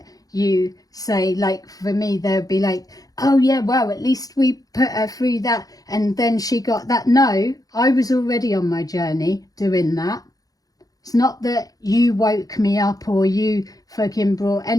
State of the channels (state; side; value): late; right; 0.18 ms